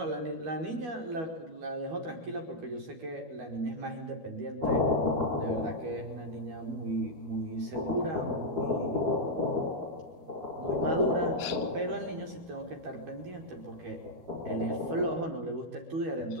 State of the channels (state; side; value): late; left; 12 ms